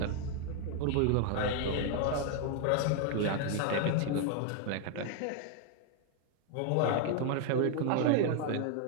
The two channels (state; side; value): different; both; correlation 0.00